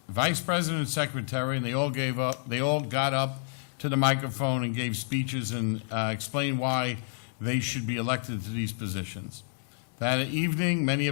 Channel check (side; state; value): right; silent; digital silence